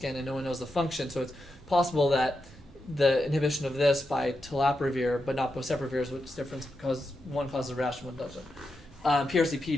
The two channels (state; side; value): normal; both; correlation 0.87